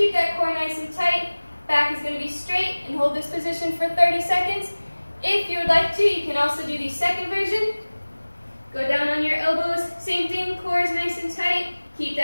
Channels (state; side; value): inverted; both; correlation -1.00